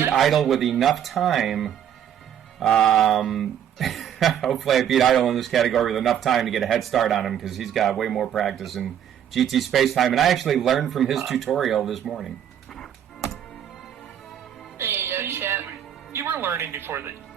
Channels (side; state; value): left; quieter; 9.6 dB